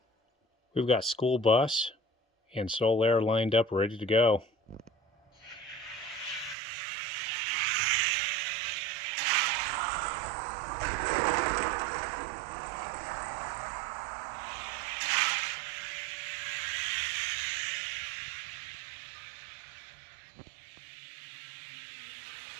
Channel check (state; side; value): drops out; left; at 6.6 s